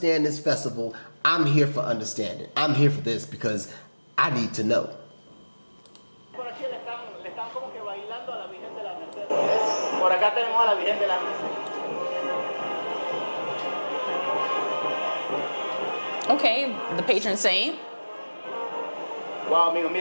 this festival, I'm here for understanding. I'm here for this because I need to know. Por aquí le están como que bailando a la Virgen de la Merced. Por acá tenemos a la Virgen de la Merced. Okay, the patron saint. Wow, amigos,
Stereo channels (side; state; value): both; inverted; correlation -1.00